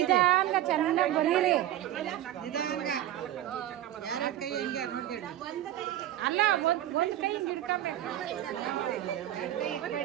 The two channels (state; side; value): quieter; left; 12.8 dB